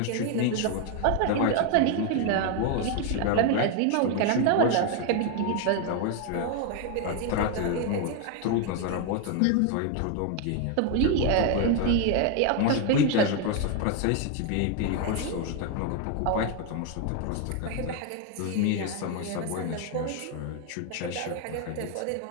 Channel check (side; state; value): both; different; correlation 0.01